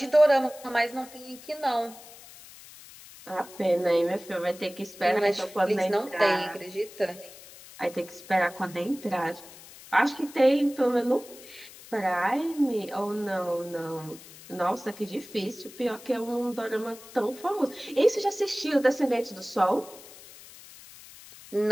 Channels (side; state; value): left; noise; hiss, 19 dB below the sound